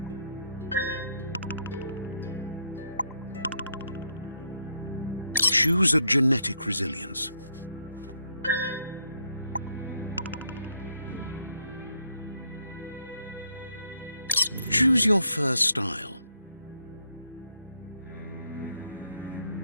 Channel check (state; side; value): inverted; both; correlation -0.74